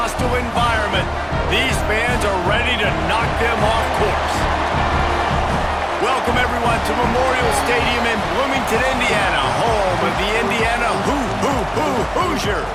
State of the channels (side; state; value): both; identical; correlation 1.00